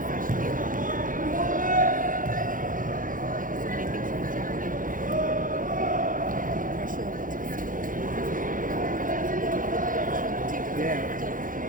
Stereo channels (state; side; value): late; left; 0.39 ms